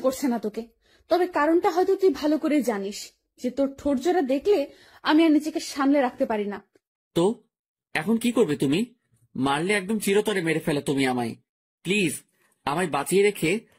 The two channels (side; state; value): both; identical; correlation 1.00